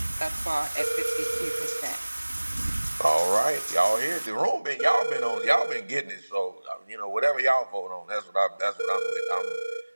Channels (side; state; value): both; inverted; correlation -1.00